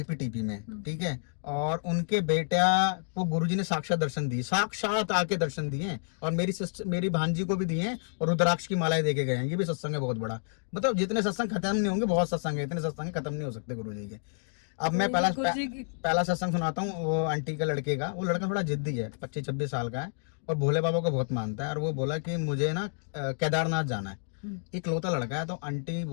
में, ठीक है। और उनके बेटा को गुरुजी ने साक्षात दर्शन दिए, साक्षात आके दर्शन दिए, और मेरी भांजी को भी दिए हैं, और रुद्राक्ष की मालाएं देके गए हैं। ये भी सत्संग है बहुत बड़ा, मतलब जितने सत्संग खत्म नहीं होंगे, बहुत सत्संग है, इतने सत्संग खत्म नहीं हो सकते गुरुजी के। अब मैं पहला सत्संग सुनाता हूँ वो आंटी के लड़के का। वो लड़का थोड़ा जिद्दी है, 25-26 साल का है, और भोले बाबा को बहुत मानता है। और वो बोला कि मुझे ना केदारनाथ जाना है, इकलौता लड़का है। तो आंटी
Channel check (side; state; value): right; silent; digital silence